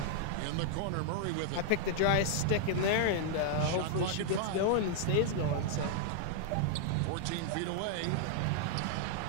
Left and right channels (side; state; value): both; different; correlation -0.01